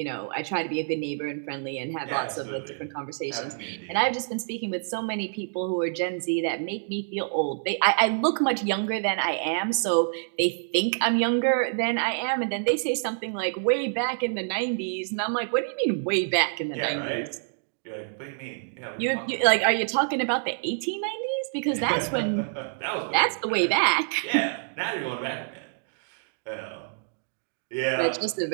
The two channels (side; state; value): left; silent; digital silence